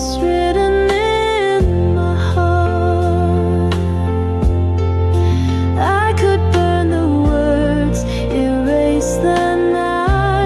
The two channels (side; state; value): both; identical; correlation 1.00